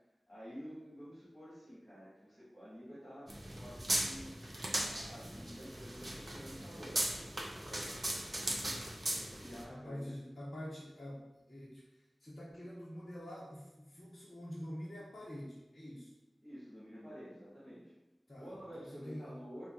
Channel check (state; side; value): normal; both; correlation 0.94